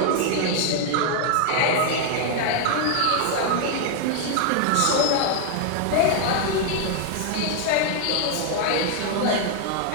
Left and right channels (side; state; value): both; different; correlation 0.00